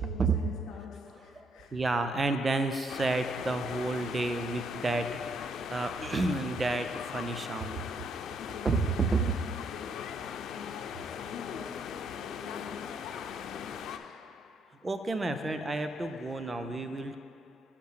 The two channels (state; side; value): normal; both; correlation 0.72